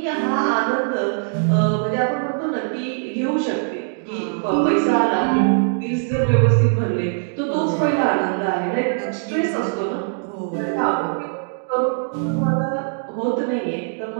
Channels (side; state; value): left; silent; digital silence